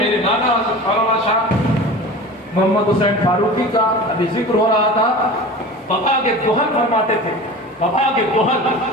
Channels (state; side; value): normal; both; correlation 0.35